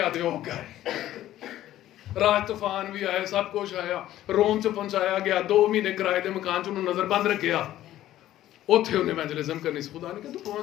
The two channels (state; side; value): quieter; right; 13.5 dB